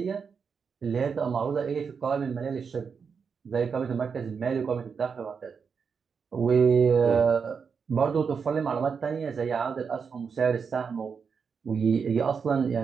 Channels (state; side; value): quieter; left; 6.0 dB